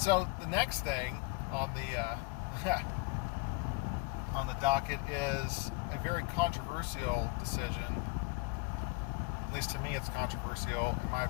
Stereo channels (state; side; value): quieter; right; 26.7 dB